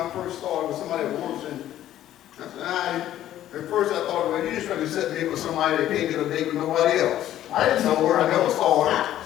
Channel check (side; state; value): right; quieter; 12.5 dB